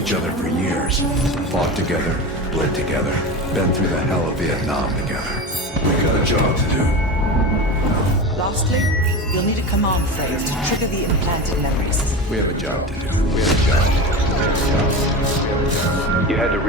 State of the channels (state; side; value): normal; both; correlation 0.26